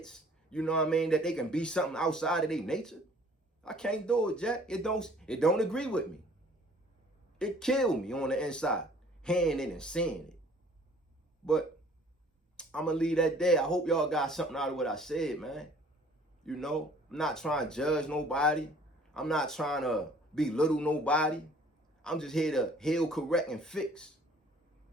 you know what I mean, that they can be something outside of their nature. I can't do it, Jack. It don't agree with me. It killed me on the inside, hearing it and seeing it. But I'm going to leave that there. I hope y'all got something out of what I said, man. You know, I'm not trying to judge nobody. I'm not trying to belittle nobody. I'm just here to heal, correct, and fix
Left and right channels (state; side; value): normal; both; correlation 0.54